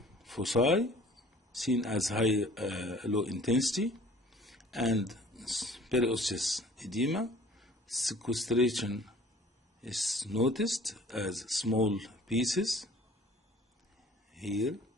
foci seen as low intensity, and periosseous edema. Sequestration is noticed as small pieces here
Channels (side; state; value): both; normal; correlation 0.50